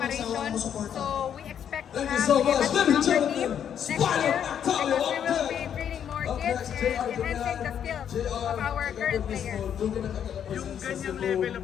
So we expect to have a much stronger team next year because we will be training more kids and enhancing the skills of our current players. Yung ganyang level of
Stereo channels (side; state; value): right; quieter; 8.9 dB